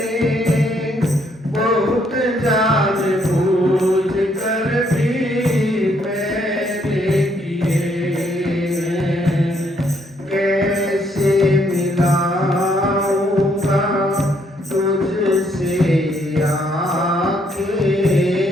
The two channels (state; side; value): normal; both; correlation 0.71